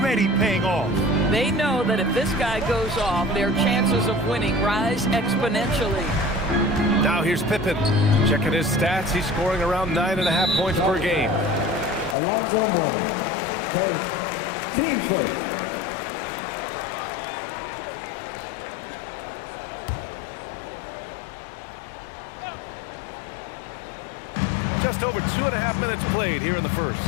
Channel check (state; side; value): drops out; right; at 12.2 s